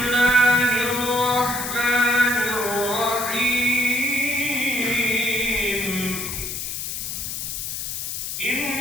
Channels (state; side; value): noise; left; hiss, 5 dB below the sound